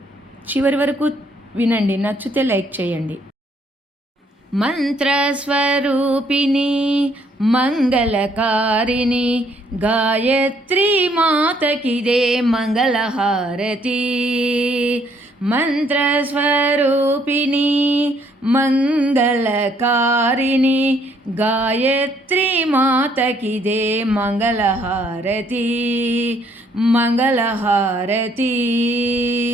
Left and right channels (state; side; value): normal; both; correlation 0.67